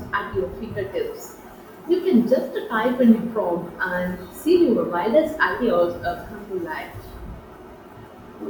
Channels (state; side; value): identical; both; correlation 1.00